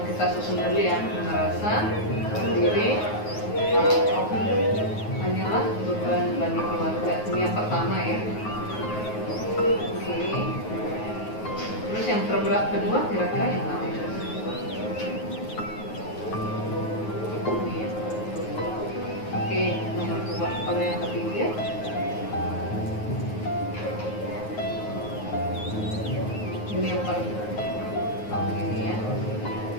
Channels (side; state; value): right; late; 9.4 ms